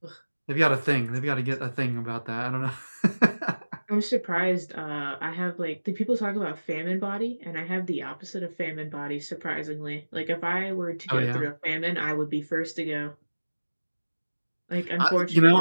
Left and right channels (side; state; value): both; inverted; correlation -1.00